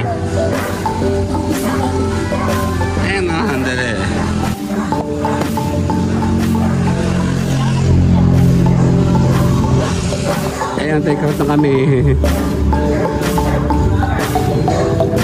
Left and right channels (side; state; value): both; identical; correlation 1.00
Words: Ayan na. Handali. Ayan, take out na kami.